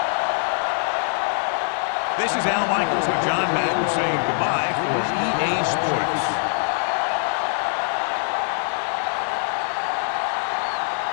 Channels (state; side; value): silent; right; 63 dB below the other